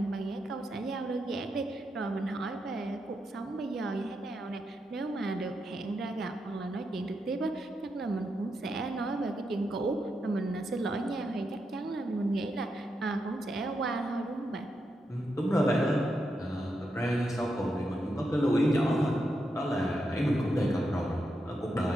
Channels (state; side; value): normal; both; correlation 0.84